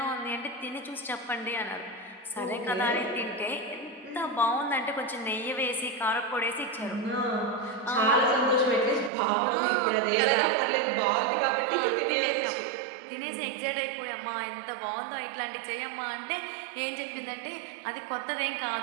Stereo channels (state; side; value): drops out; left; at 9.1 s